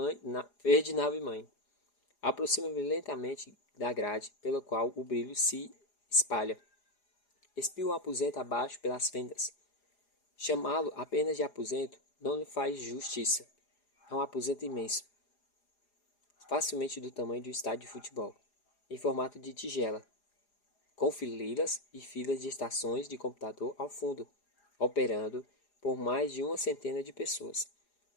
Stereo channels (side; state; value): right; late; 4.9 ms